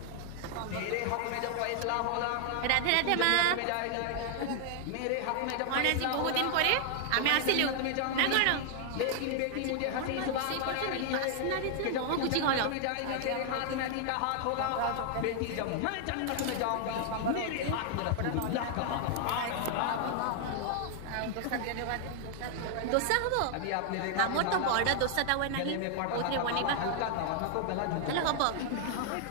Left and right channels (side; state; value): both; different; correlation 0.00